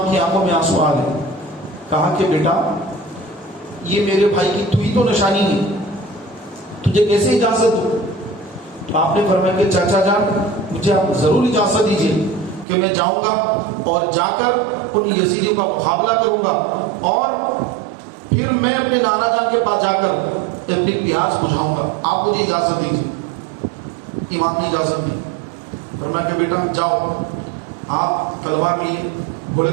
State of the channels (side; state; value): left; drops out; at 12.7 s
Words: کی آنکھوں میں آنسو آ گئے. کہا کہ بیٹا یہ میرے بھائی کی تو ہی تو نشانی ہے, تجھے کیسے اجازت دو؟ تو آپ نے فرمایا کہ چاچا جان مجھے آپ ضرور اجازت دیجیے کہ میں جاؤں گا اور جا کر ان یزیدیوں کا مقابلہ کروں گا اور پھر میں اپنے نانا جان کے پاس جا کر اپنی پیاس بجھاؤں گا, آپ مجھے اجازت دیجیے. امام نے اجازت دی, فرمایا کہ بیٹا جاؤ. آپ تلوار لیے گھوڑے